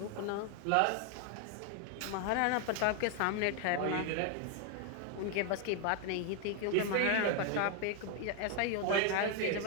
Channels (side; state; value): both; different; correlation 0.01